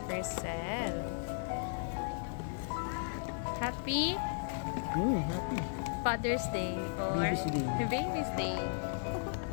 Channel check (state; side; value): silent; right; digital silence